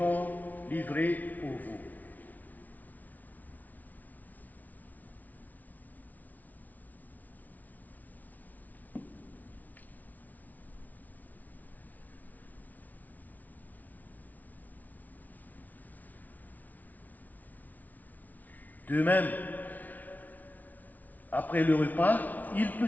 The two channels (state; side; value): late; right; 0.077 ms